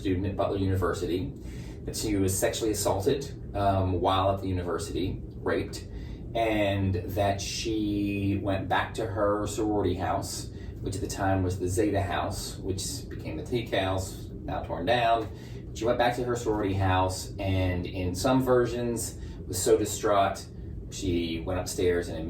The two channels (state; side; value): identical; both; correlation 1.00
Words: at Butler University, that she was sexually assaulted while at the university, raped, and that she went back to her sorority house, which at the time was the Zeta House, which became the Teak House, now torn down. She went back to her sorority house, and in some versions was so distraught she went upstairs and